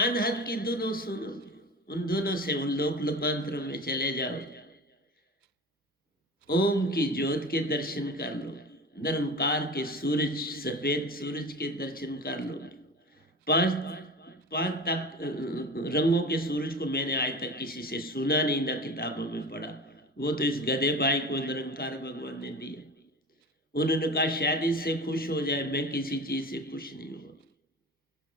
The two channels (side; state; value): both; normal; correlation 0.33